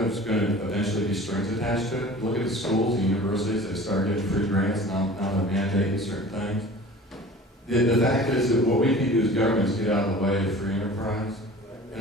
there's going to eventually be strings attached to it. Look at the schools, the universities, they start getting free grants, now they're mandating certain things. The fact is that what we can do as governments get out of the way of free enterprise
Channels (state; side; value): normal; both; correlation 0.42